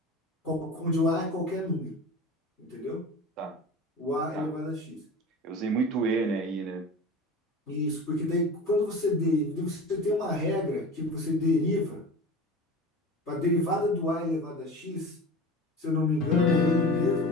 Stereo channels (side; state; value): both; normal; correlation 0.34